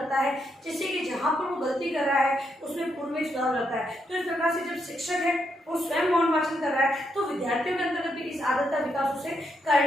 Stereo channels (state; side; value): normal; both; correlation 0.79